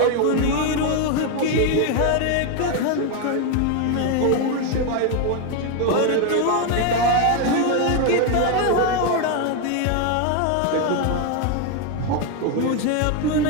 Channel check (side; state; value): both; different; correlation 0.01